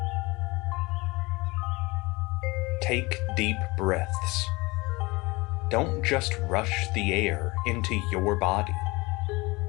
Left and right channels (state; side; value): quieter; right; 23.9 dB